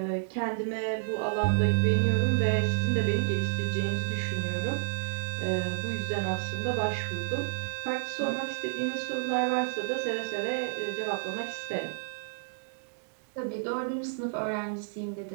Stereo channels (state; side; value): silent; left; digital silence